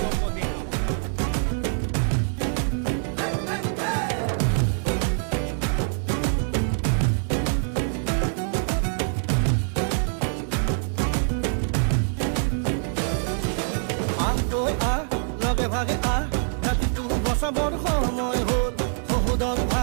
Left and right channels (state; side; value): silent; left; digital silence